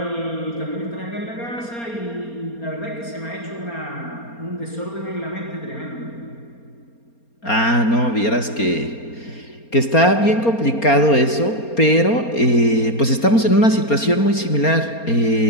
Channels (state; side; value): late; right; 4.3 ms